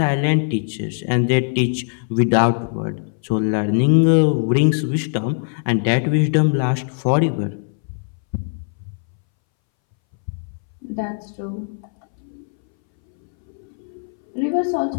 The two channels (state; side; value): silent; right; 63 dB below the other